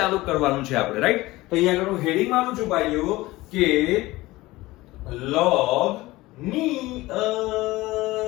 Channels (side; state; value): right; quieter; 19.2 dB